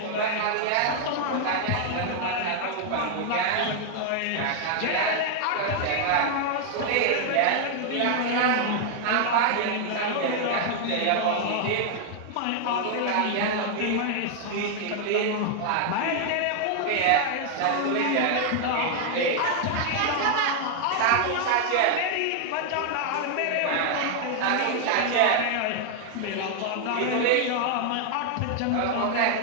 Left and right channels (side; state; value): both; different; correlation 0.00